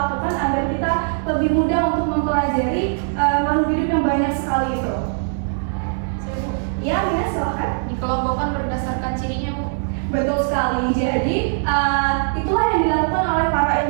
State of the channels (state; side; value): silent; left; digital silence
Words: agar kita lebih mudah untuk mempelajari makhluk hidup yang banyak sekali itu? Ya, Mina, silakan. Dikelompokkan berdasarkan cirinya, Bu. Betul sekali. Jadi itulah yang dilakukan oleh para